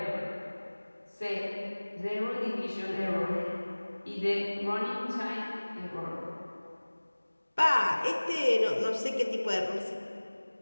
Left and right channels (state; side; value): inverted; both; correlation -1.00